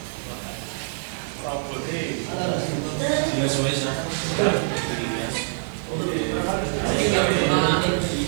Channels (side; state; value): left; silent; digital silence